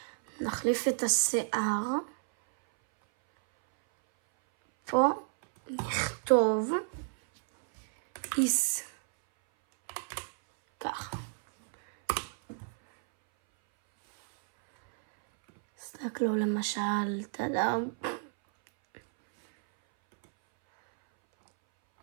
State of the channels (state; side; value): silent; left; 57 dB below the other